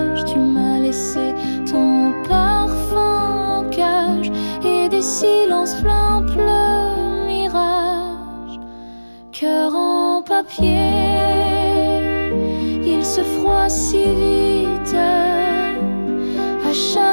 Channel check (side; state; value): both; inverted; correlation -1.00